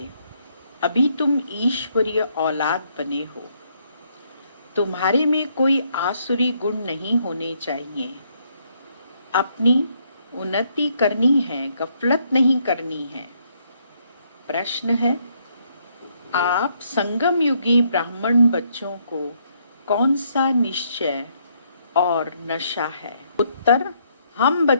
अभी तुम ईश्वरीय औलाद बने हो। तुम्हारे में कोई आसुरी गुण नहीं होने चाहिए। अपनी उन्नति करनी है, गफलत नहीं करनी है। प्रश्न है, आप संगम युगी ब्राह्मण बच्चों को कौन सा निश्चय और नशा है? उत्तर, हम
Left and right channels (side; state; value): both; inverted; correlation -0.72